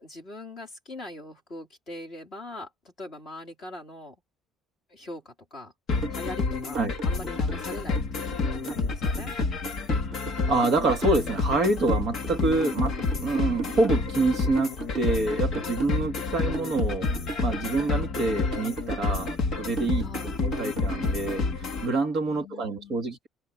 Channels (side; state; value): both; normal; correlation 0.53